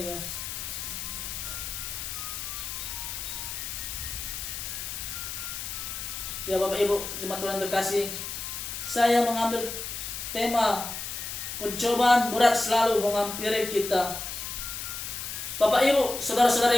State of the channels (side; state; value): left; noise; hiss, 6 dB below the sound